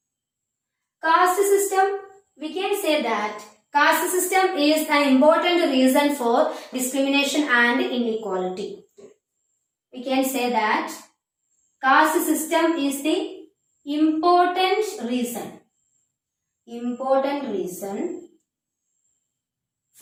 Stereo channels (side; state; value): both; identical; correlation 1.00